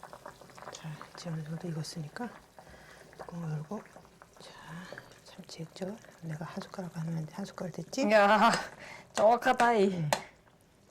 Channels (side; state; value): both; identical; correlation 1.00